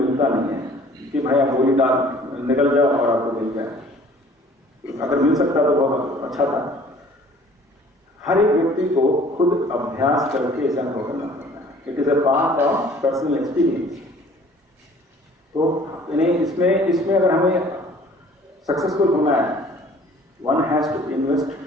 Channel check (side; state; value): both; normal; correlation 0.53